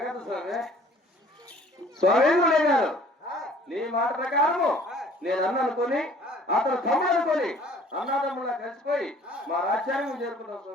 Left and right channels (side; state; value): both; normal; correlation 0.54